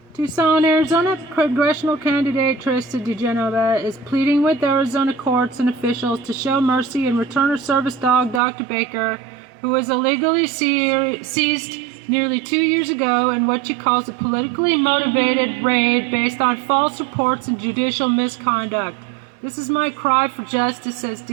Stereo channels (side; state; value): left; drops out; at 8.4 s